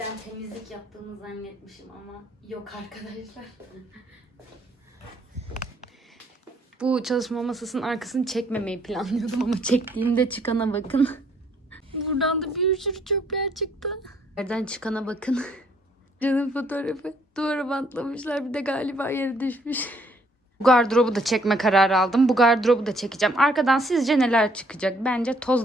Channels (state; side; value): normal; both; correlation 0.66